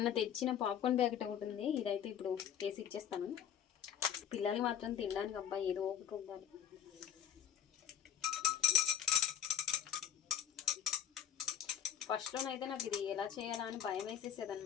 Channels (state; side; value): quieter; right; 9.1 dB